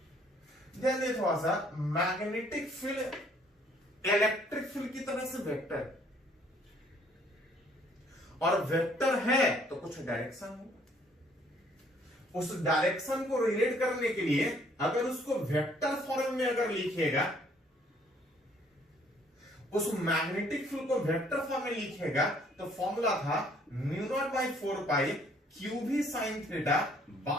ध्यान दें थोड़ा सा, मैग्नेटिक फील्ड इलेक्ट्रिक फील्ड की तरह से वेक्टर, और वेक्टर है तो कुछ डायरेक्शन होगा, उस डायरेक्शन को रिलेट करने के लिए अगर उसको वेक्टर फॉर्म में अगर लिखेगा, उस मैग्नेटिक फील्ड को वेक्टर फॉर्म में लिखेगा, तो फॉर्मूला था mu naught by 4 pi q भी sine theta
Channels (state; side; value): normal; both; correlation 0.62